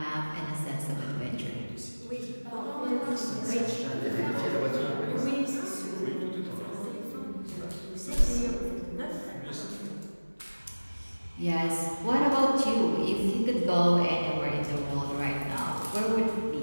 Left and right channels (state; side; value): inverted; both; correlation -1.00